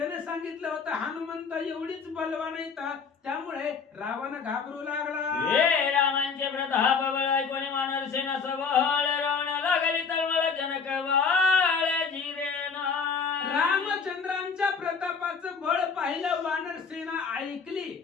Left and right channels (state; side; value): quieter; right; 5.5 dB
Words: सांगितलं होतं हनुमंत एवढीच बलवान आहेत त्यामुळे रावण घाबरू लागला. हे रामांचे प्रताप बळ कोणी मानर सेना सबळ रावण लागली तळमळ जनक बाळ जिरेना. रामचंद्रांच्या प्रतापाचं बळ पाहिलं वानर सेना ऐकली